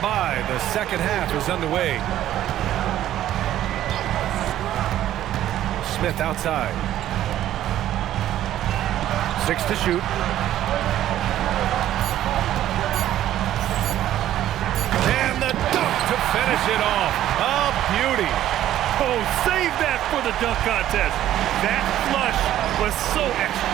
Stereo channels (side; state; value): left; quieter; 12.6 dB